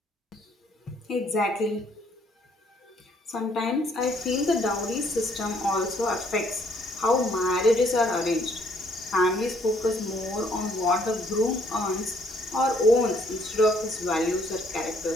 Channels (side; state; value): both; normal; correlation 0.65